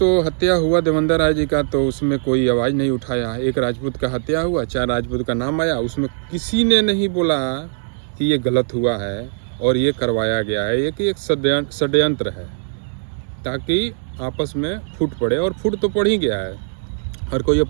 हत्या हुआ देवेंद्र राय जी का, तो उसमें कोई आवाज़ नहीं उठाया। एक राजपूत का हत्या हुआ, 4 राजपूत का नाम आया, उसमें किसी ने नहीं बोला कि ये गलत हुआ है और ये करवाया गया है। ये कि एक षड्यंत्र है ताकि आपस में फूट पड़े, और फूट तो पड़ ही गया है। हर कोई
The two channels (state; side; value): silent; left; digital silence